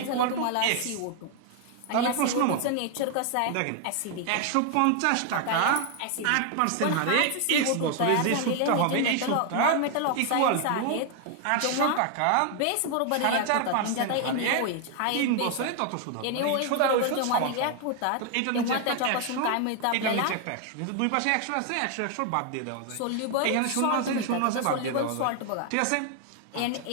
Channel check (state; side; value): different; both; correlation 0.00